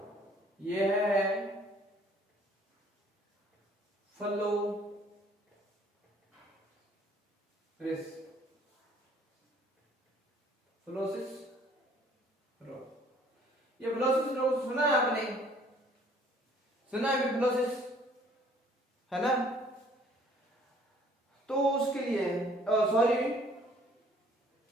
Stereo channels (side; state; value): both; normal; correlation 0.58